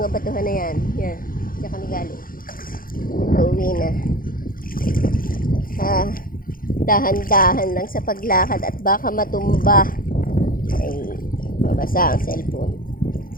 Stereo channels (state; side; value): late; right; 0.41 ms